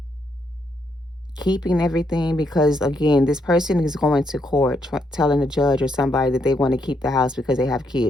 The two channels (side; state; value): both; normal; correlation 0.77